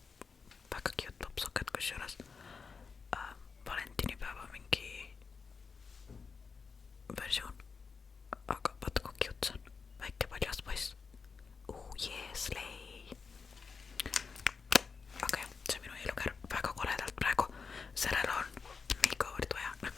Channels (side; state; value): right; quieter; 5.2 dB